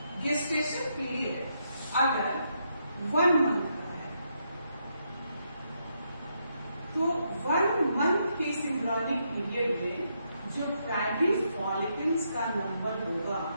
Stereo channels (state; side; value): inverted; both; correlation -0.79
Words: गेस्टेशन पीरियड अगर 1 मंथ का है तो 1 मंथ के एम्ब्रियोनिक पीरियड में जो प्राइमरी फॉलिकल्स का नंबर होगा